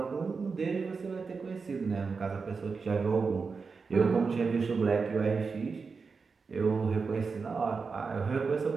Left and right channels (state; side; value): quieter; left; 4.9 dB